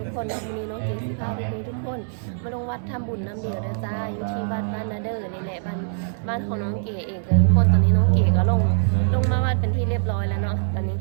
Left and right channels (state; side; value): silent; left; 63 dB below the other